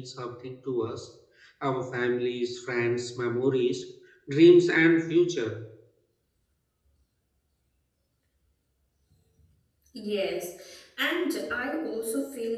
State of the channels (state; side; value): identical; both; correlation 1.00